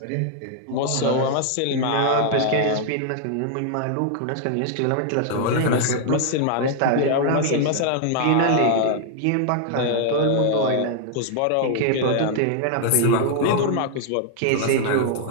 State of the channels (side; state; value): both; different; correlation 0.00